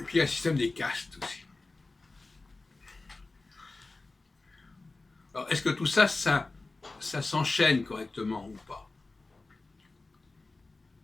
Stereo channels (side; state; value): right; quieter; 3.4 dB